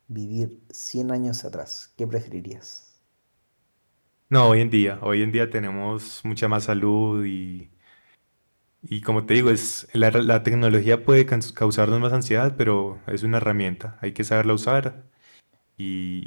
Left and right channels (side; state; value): both; inverted; correlation -1.00